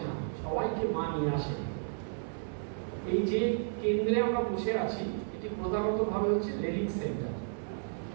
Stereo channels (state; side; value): silent; left; 56 dB below the other